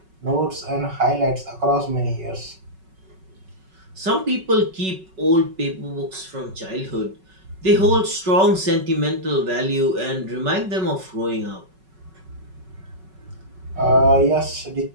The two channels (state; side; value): late; left; 5.3 ms